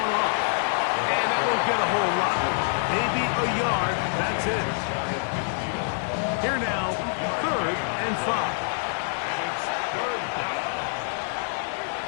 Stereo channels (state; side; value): silent; right; 61 dB below the other